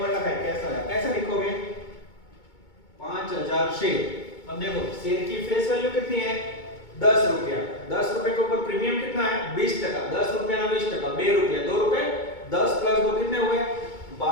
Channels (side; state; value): right; late; 2.2 ms